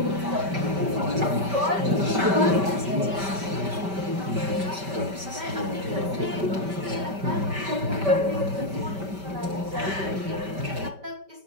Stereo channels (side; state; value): left; late; 5.2 ms